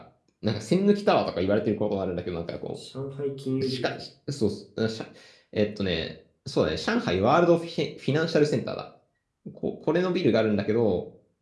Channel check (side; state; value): both; identical; correlation 1.00